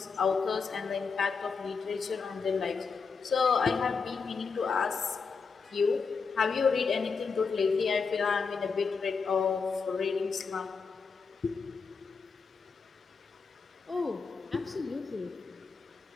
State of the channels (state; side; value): quieter; right; 5.2 dB